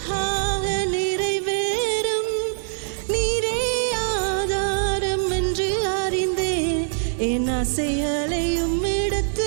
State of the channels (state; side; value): silent; left; digital silence